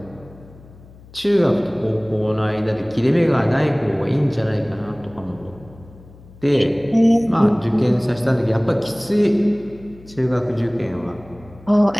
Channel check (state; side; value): noise; left; hum, 22 dB below the sound